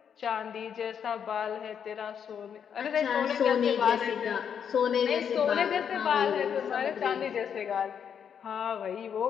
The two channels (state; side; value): quieter; right; 7.8 dB